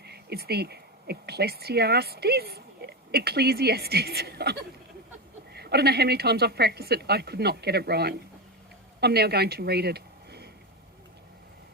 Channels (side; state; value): both; normal; correlation 0.15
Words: It's the Ecclesiastes. I don't know how many times I've practiced it. I could not get it right. I'm now going to read it.